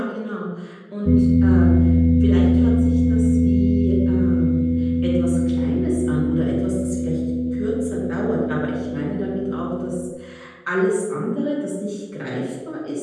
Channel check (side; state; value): both; identical; correlation 1.00